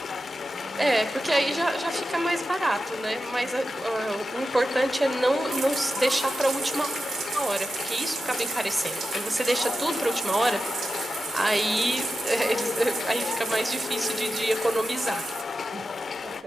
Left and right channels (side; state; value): both; normal; correlation 0.91